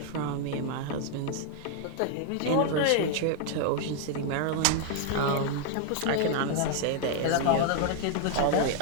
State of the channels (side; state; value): both; different; correlation 0.00